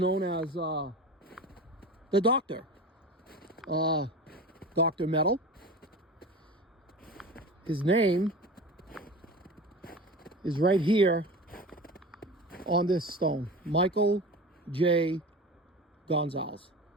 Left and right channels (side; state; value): both; normal; correlation 0.32